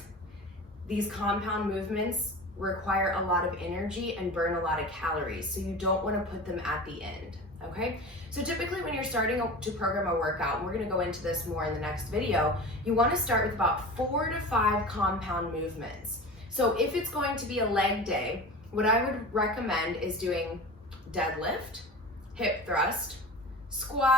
These compound movements require a lot of energy and burn a lot of calories. So you don't wanna put them at the end. Okay, so typically when you're starting to program a workout, and we're going to go into this more in the next video, you want to start with about 4 to 5 compound movements. So if it's going to be a leg day, what I would recommend is doing deadlift, hip thrust,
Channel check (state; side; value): normal; both; correlation 0.34